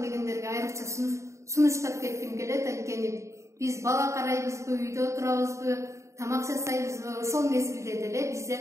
дегендерге айрыкча сунуштап кетким келет. Анткени биз бала карайбызбы, үйдө отурабызбы, тамак жасайбызбы, ошол мезгилде деле бизде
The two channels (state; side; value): late; left; 0.14 ms